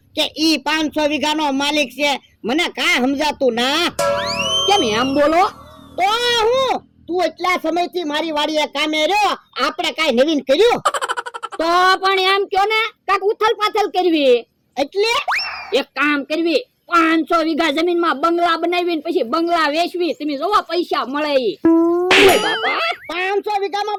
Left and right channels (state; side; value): identical; both; correlation 1.00